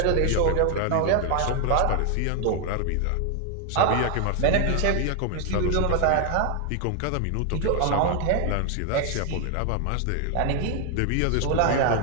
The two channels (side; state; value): both; different; correlation 0.00